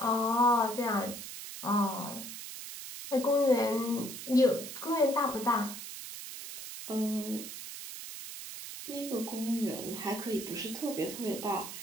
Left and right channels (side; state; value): right; noise; hiss, 10 dB below the sound